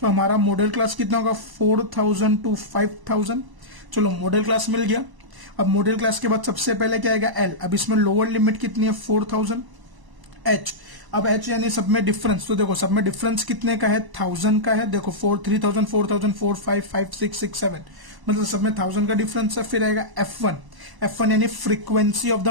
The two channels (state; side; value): late; left; 1.0 ms